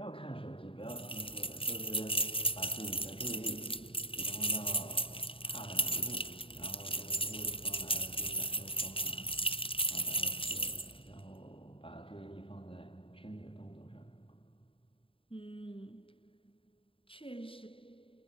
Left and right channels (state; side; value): late; right; 0.26 ms